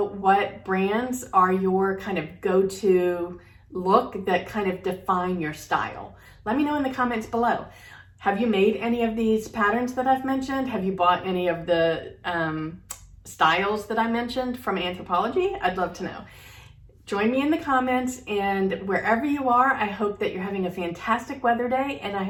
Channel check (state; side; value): identical; both; correlation 1.00